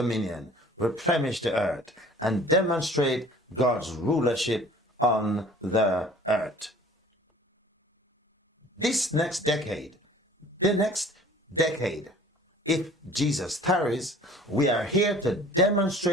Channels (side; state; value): both; normal; correlation 0.49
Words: replenish the earth, and demonstrate God's rulership on the earth. This next decade, the next decade, if Jesus tarries, we are here to